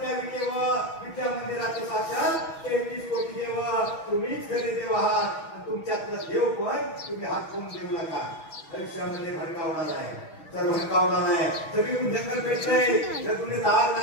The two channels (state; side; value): late; right; 6.3 ms